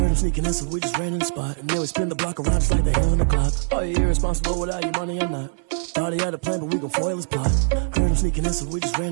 him sneaking in, so we just ran in the spot. And then we spin the block around just like the hands on the clock. Are you irresponsible without your money or not? Thought he had a plan, but we gon' foil his plot. Heard him sneaking in, so we just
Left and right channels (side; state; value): left; silent; 58 dB below the other